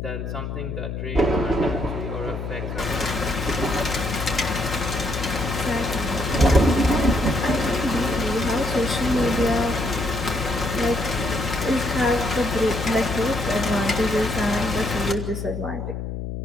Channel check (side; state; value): left; noise; hum, 5 dB below the sound